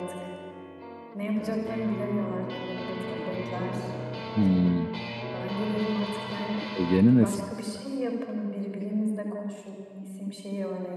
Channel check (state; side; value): identical; both; correlation 1.00